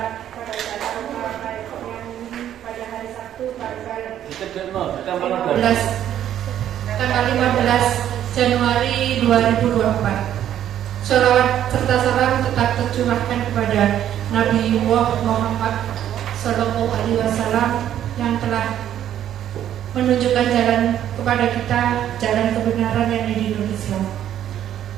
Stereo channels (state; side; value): quieter; left; 10.9 dB